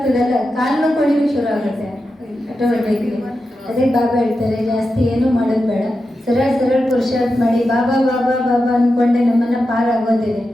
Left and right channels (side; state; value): both; normal; correlation 0.90